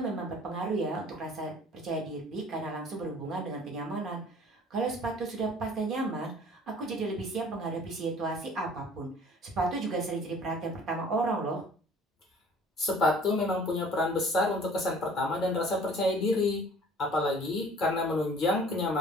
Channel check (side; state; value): both; normal; correlation 0.51